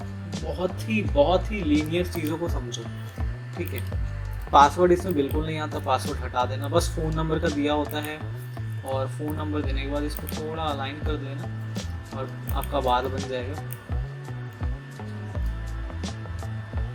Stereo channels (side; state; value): both; identical; correlation 1.00